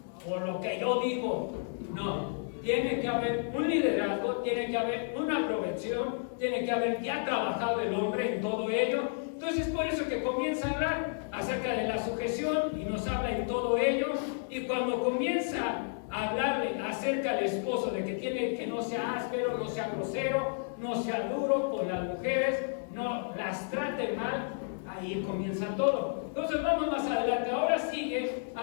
Por lo que yo digo. No, tiene que haber un liderazgo, tiene que haber una provección, tiene que haber ya trabajado el hombre en todo ello. Entonces por eso que comienza a hablar acerca de la sujeción y nos habla en todo ello. Y cuando comienza a hablarle acerca del esposo, de que tiene que no sea áspero, no sea grosero, no sea duro con las mujeres, no las trate mal, ahí comienza todo. Entonces vamos más adelante. Ahora sigue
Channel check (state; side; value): silent; right; digital silence